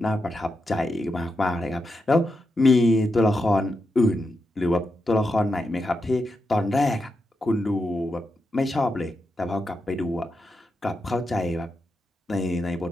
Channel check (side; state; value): both; normal; correlation 0.86